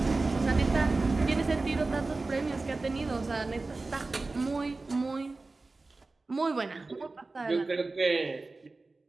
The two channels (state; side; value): quieter; left; 3.5 dB